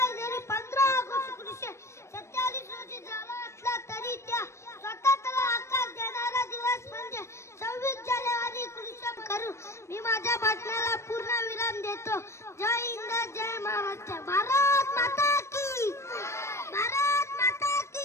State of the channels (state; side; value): late; right; 0.13 ms